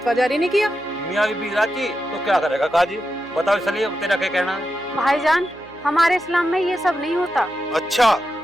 जारी नहीं किया। मियाँ बीबी राजी तो क्या करेगा काजी? बताओ सलीम, तेरा क्या कहना है? भाईजान, हमारे इस्लाम में ये सब नहीं होता। अच्छा,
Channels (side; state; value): right; noise; hum, 23 dB below the sound